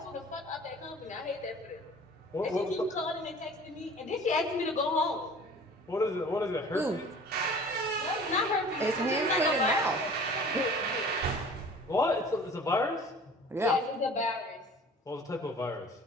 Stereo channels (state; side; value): normal; both; correlation 0.46